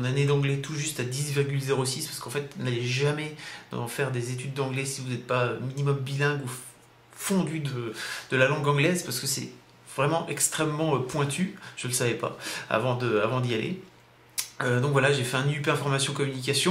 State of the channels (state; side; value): identical; both; correlation 1.00